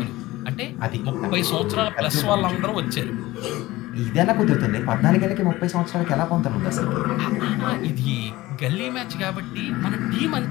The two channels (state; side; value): quieter; right; 18.2 dB